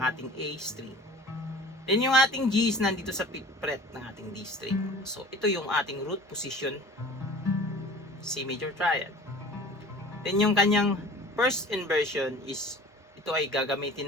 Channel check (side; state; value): both; normal; correlation 0.43